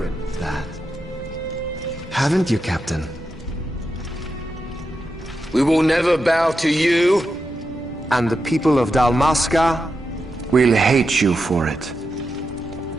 that. Haven't you, Captain? We will never bow to you. And the people of Dalmasca will hate you for it.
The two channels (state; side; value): normal; both; correlation 0.87